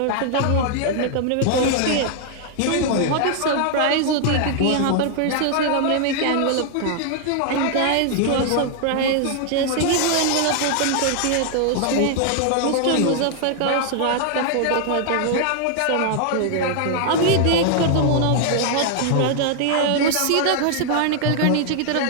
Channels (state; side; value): different; both; correlation 0.00